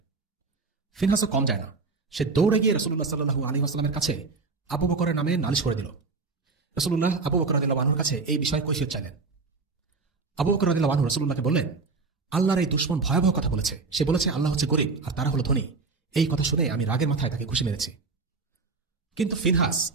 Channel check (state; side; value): quieter; left; 4.2 dB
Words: ফিনহাসও কম যায় না। সে দৌড়ে গিয়ে রাসূলুল্লাহ সাল্লাল্লাহু আলাইহি ওয়াসাল্লামের কাছে আবু বকরের নামে নালিশ করে দিল। রাসূলুল্লাহ আবু বকর রাদিয়াল্লাহু আনহুর কাছে এই বিষয়ে কৈফিয়ত চাইলেন। আবু বকর রাদিয়াল্লাহু আনহু রাসূলুল্লাহকে বললেন, আল্লাহর এই দুশমন ভয়াবহ কথা বলেছে। সে বলেছে আল্লাহ হচ্ছে গরিব আর তারা হলো ধনী। এই কথা শুনে আমি রাগের মাথায় তাকে খুশি মেরেছি। কিন্তু ফিনহাস